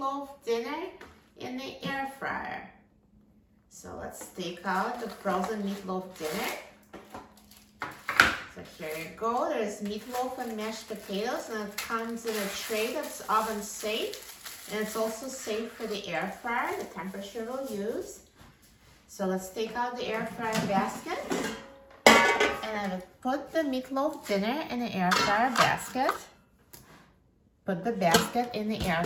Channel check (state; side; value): identical; both; correlation 1.00